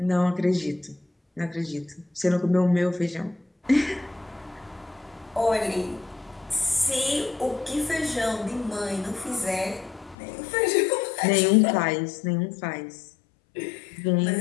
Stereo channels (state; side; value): drops out; right; at 10.2 s